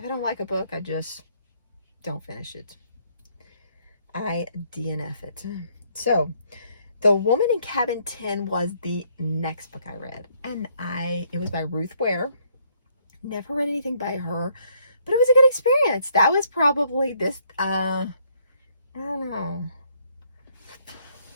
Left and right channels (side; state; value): both; inverted; correlation -0.68